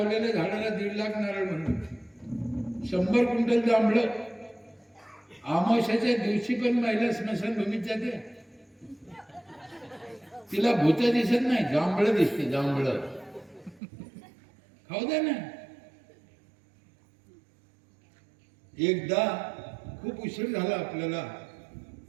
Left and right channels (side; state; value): left; drops out; at 13.8 s